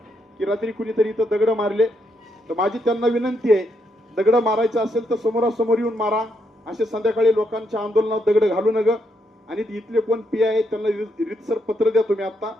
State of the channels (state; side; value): normal; both; correlation 0.78